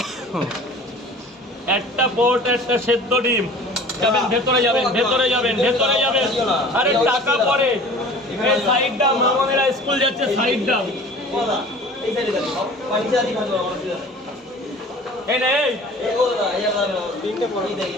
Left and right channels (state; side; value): normal; both; correlation 0.44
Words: একটা পরোটা একটা সেদ্ধ ডিম। যাবেন ভেতরে, যাবেন ভেতরে, যাবেন ভেতরে, যাবেন। আরে টাকা পরে, এই সাইড দাম, মামনেরা স্কুল যাচ্ছে, সাইড দাম। এই নে, এই